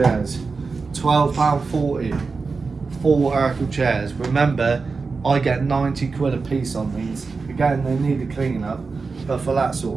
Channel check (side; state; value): left; quieter; 4.5 dB